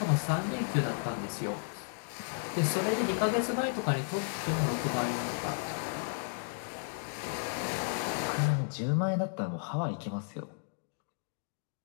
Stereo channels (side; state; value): right; silent; digital silence